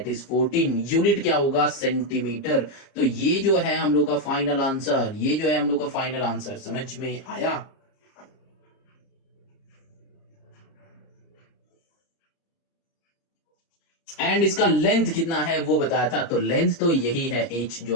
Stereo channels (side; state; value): right; late; 30 ms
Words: is 14, unit क्या होगा सेंटीमीटर। तो ये जो है हम लोग का फाइनल आंसर, ये जो है हम लोग का फाइनल आंसर, समझ में आया। एंड इसका लेंथ कितना है वो बताया था, तो लेंथ तो यही है h